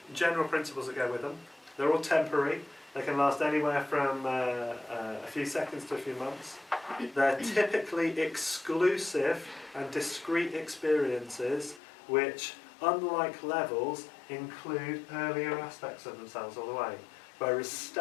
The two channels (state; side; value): drops out; right; at 11.8 s